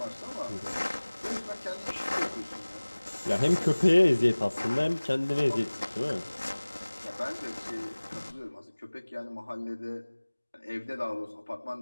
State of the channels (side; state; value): both; inverted; correlation -1.00